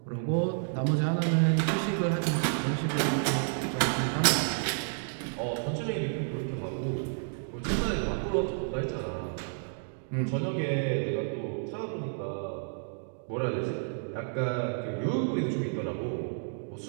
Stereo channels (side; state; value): left; silent; digital silence